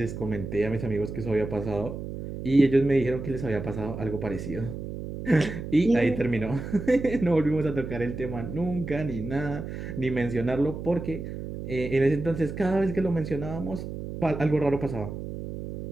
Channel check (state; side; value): noise; right; hum, 8 dB below the sound